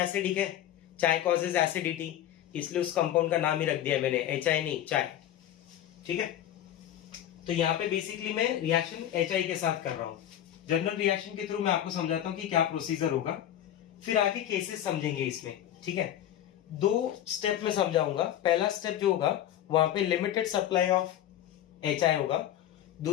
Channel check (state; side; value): quieter; right; 11.5 dB